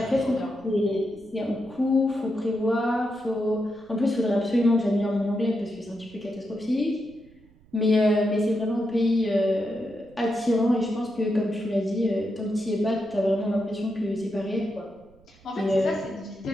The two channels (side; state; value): right; noise; rumble, 28 dB below the sound